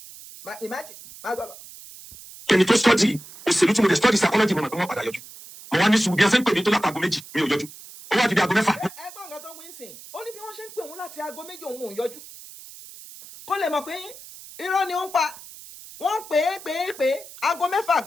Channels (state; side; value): noise; right; hiss, 17 dB below the sound